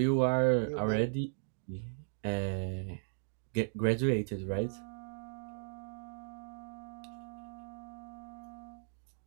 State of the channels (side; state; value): left; silent; digital silence